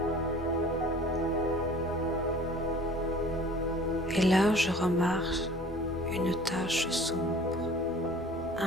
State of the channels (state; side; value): normal; both; correlation 0.47